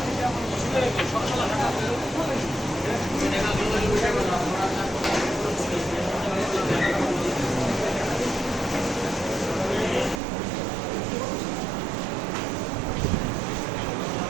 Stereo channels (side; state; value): left; drops out; at 10.2 s